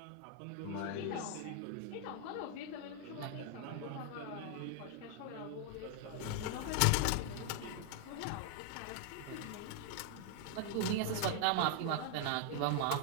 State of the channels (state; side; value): different; both; correlation 0.00